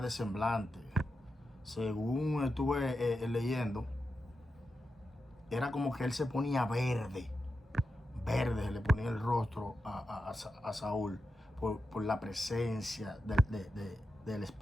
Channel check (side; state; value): both; normal; correlation 0.89